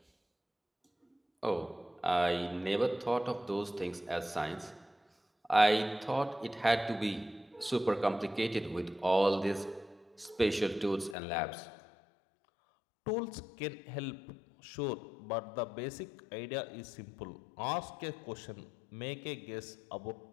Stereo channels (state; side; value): drops out; right; at 11.2 s